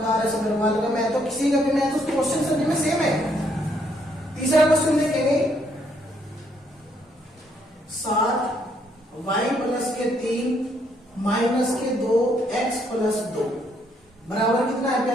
आर.एस. अग्रवाल का मैथ हो, किसी का भी मैथ, उस क्वेश्चन सभी में सेम है। तीसरा क्वेश्चन देखेंगे, 7y प्लस के 3 माइनस के 2x प्लस 2 बराबर कितना है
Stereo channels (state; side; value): normal; both; correlation 0.71